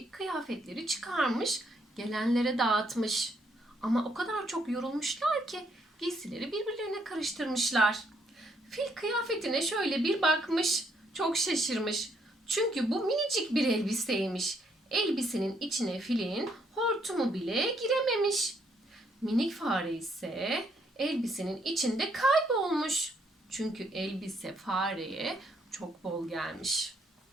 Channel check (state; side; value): normal; both; correlation 0.71